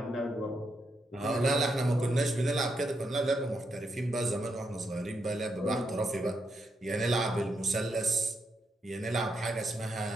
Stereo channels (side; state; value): both; normal; correlation 0.81